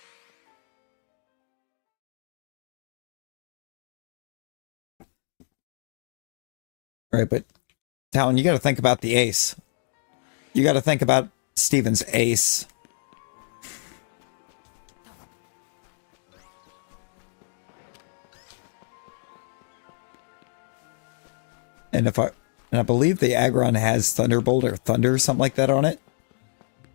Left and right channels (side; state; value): right; silent; digital silence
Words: Right, but Talon, you got to think about the ace. You got to think about Steven's ace. And I believe the Aggron has Thunderbolt or Thunder, something like that on it.